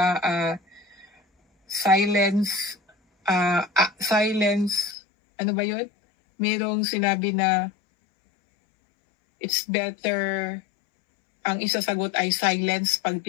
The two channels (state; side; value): drops out; right; at 5.0 s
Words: silence, ano ba yun? Mayroong sinabi na it's better, ang isasagot ay silence pag